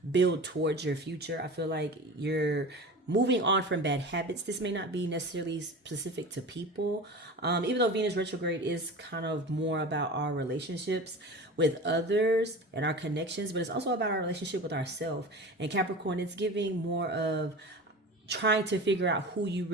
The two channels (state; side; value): normal; both; correlation 0.33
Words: build towards your future. I feel like you're moving on from bad habits. This may not be necessarily specific to people, even though Venus retrograde is kind of more about our relationships with others and our connections, but it's also about our relationship with ourselves. And Capricorn, it's giving more of trying to figure out who you